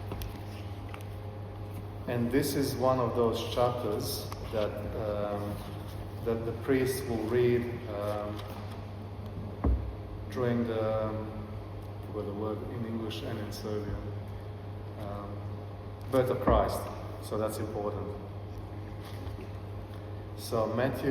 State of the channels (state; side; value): identical; both; correlation 1.00